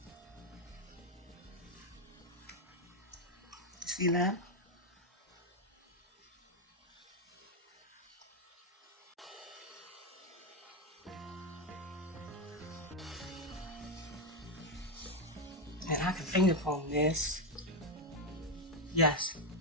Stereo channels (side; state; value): both; normal; correlation 0.06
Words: See that? And I can finger comb this. Yes,